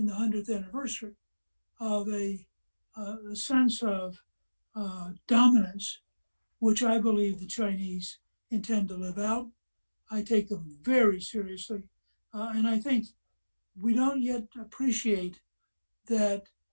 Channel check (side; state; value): both; inverted; correlation -1.00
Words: the 100th anniversary, of a sense of dominance, which I believe the Chinese intend to live out. I take them very seriously. And I think we don't yet appreciate that